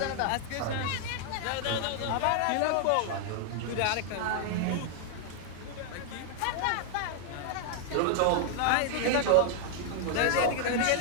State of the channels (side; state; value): both; different; correlation 0.00